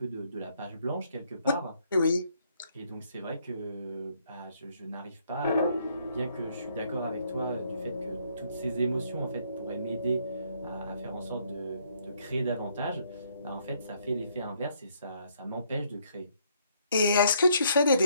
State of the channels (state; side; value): inverted; both; correlation -0.69